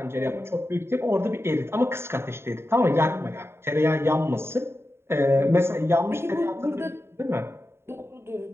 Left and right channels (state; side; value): late; left; 0.12 ms